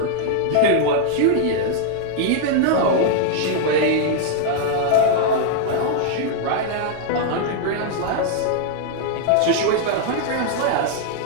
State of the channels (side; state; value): both; different; correlation -0.01